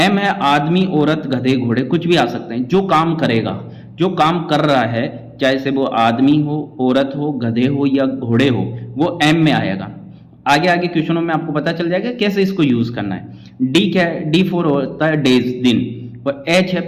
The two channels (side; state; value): both; identical; correlation 1.00